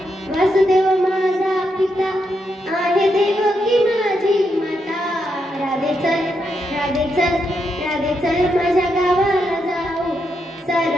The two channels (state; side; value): normal; both; correlation 0.81